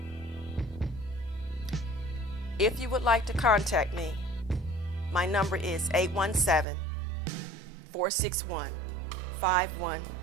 If you would like to contact me, my number is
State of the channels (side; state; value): left; drops out; at 6.7 s